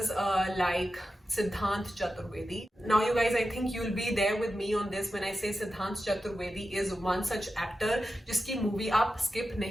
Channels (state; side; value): normal; both; correlation 0.91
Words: like Siddhant Chaturvedi. Now you guys, I think you'll be there with me on this when I say Siddhant Chaturvedi is one such actor जिसकी movie आप skip